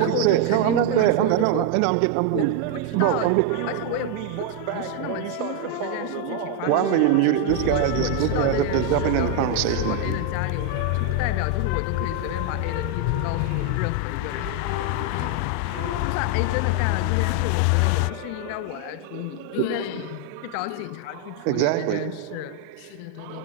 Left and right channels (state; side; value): different; both; correlation 0.01